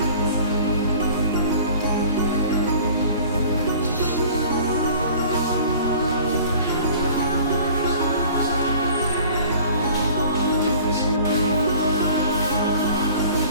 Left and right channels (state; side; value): inverted; both; correlation -0.47